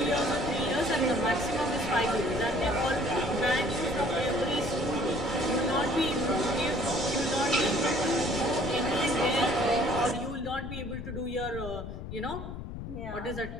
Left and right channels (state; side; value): noise; left; rumble, 8 dB below the sound